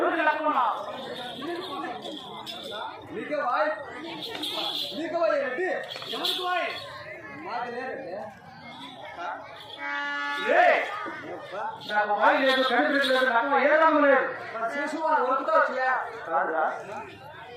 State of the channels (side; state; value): both; identical; correlation 1.00